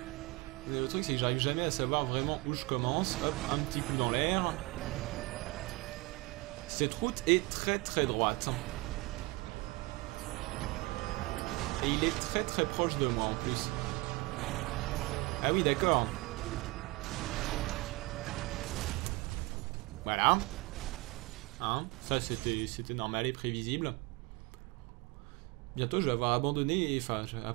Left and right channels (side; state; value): left; quieter; 23.0 dB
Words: Mais le truc, c'est que j'arrive jamais à savoir vraiment où je commence. Hop, un petit coup dans l'air. Cette route est très très droite. Et il est très très proche de moi en plus. Ah oui, d'accord. Voilà. Hein, ça c'était normal et prévisible. Bientôt je vais avoir abandonné, enfin je vais